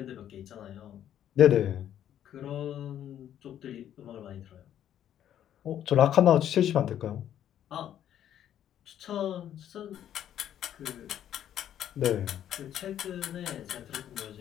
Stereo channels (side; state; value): right; quieter; 10.7 dB